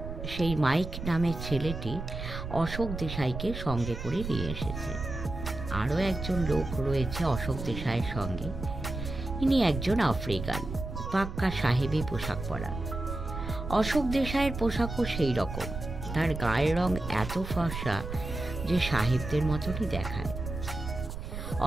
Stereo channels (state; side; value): noise; right; rumble, 7 dB below the sound